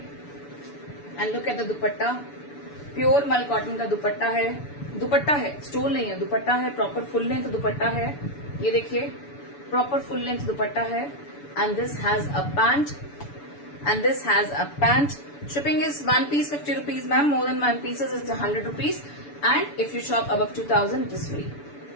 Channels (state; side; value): late; right; 6.9 ms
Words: And look at the dupatta. Pure मल कॉटन का दुपट्टा है. दुपट्टा है, स्टोल नहीं है, दुपट्टा है. प्रॉपर फुल लेंथ दुपट्टा है. ये देखिए प्रॉपर फुल लेंथ दुपट्टा है. And this has a pant. And this has a pant. Shipping is one piece 50 rupees ma'am. More than one pieces is 100 rupees. And if you shop above 2000 it is free.